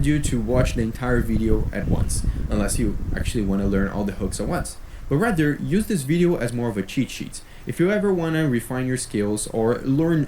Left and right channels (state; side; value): identical; both; correlation 1.00